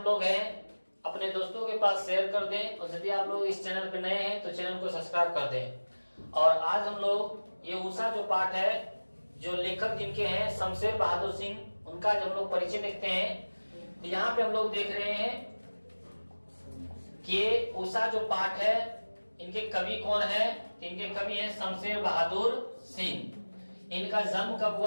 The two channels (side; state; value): both; inverted; correlation -1.00